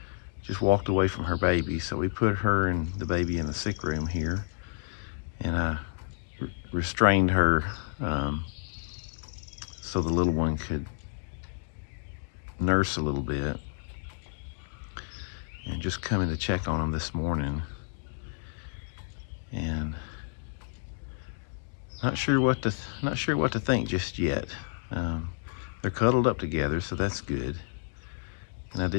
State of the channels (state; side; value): silent; right; digital silence